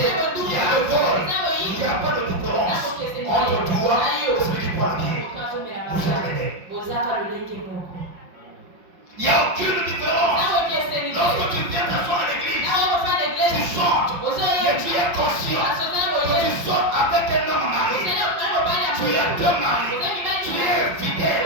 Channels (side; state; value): left; late; 5.6 ms